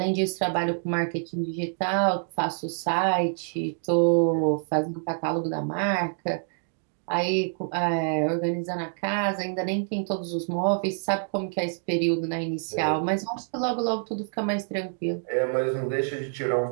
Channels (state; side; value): silent; left; 58 dB below the other